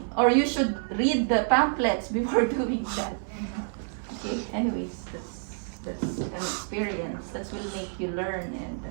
or you should read the pamphlets before doing that. Okay. Anyways, that's an experience that will make you learn and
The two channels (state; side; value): silent; left; 59 dB below the other